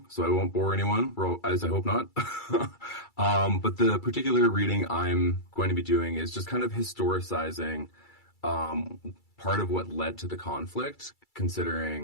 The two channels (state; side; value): late; right; 2.3 ms